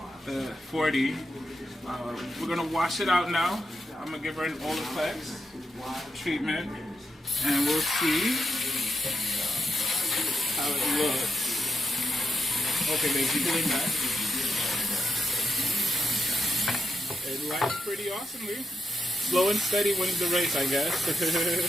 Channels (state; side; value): normal; both; correlation 0.84